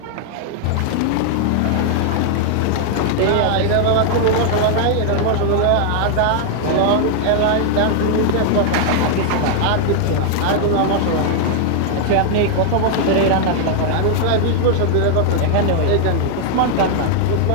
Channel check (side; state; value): both; different; correlation 0.00